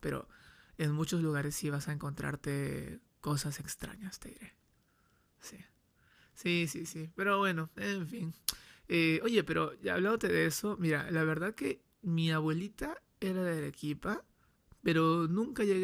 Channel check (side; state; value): both; identical; correlation 1.00